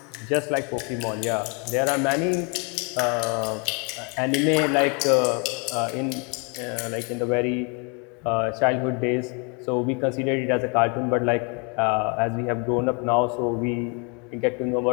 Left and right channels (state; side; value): quieter; right; 34.6 dB